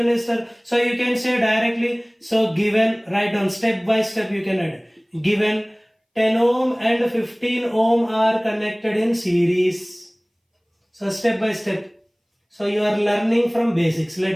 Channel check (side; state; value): both; identical; correlation 1.00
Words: resistor. So you can say directly, so given, write down step by step you can add. Given 10 ohm and 15 ohm are connected in series. So step by step. So you are learning from basics.